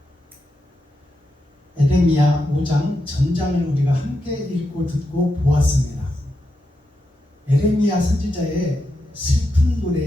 에레미야 5장 전장을 우리가 함께 읽고 듣고 보았습니다. 에레미야 선지자의 슬픈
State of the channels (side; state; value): both; normal; correlation 0.86